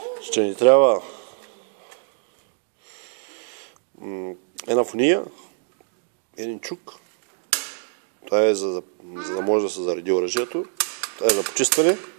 Ще ни трябва една фуния, един чук. Това е за да може да се зареди оръжието. Това е за почистване.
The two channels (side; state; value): left; silent; 62 dB below the other